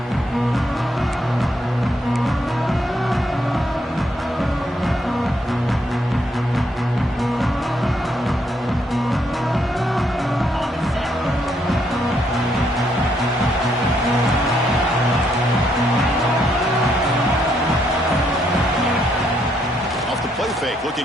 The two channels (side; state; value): both; normal; correlation 0.74